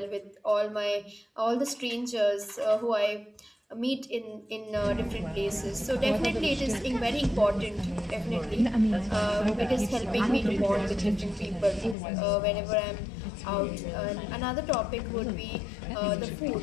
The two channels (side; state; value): right; drops out; at 12.0 s